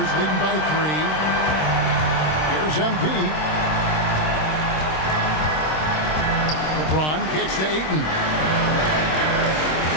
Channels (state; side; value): late; right; 26 ms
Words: leading by 3. Here's MP. LeBron kicks to Ayton.